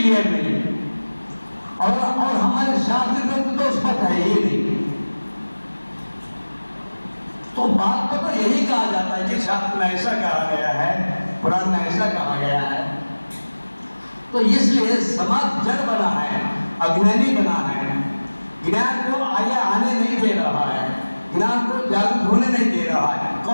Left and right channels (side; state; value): both; inverted; correlation -1.00